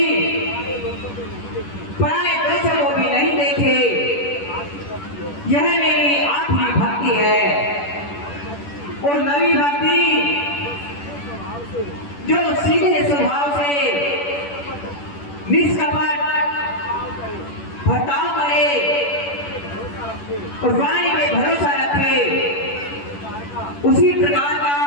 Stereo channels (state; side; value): late; right; 10 ms